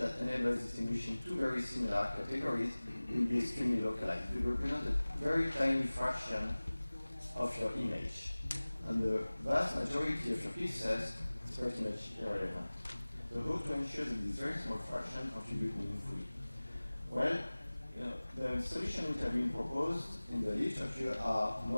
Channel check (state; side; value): inverted; both; correlation -0.99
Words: that enables distinguishing two very similar categories will be extremely localized. It will represent a very tiny fraction of your image. And the vast majority of your pixels is pretty much irrelevant. So how to ensure that this very small fraction contribute meaningfully? Well, the solutions which have been proposed in the literature are